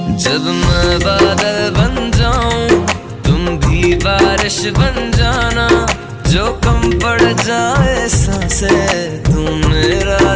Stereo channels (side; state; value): both; identical; correlation 1.00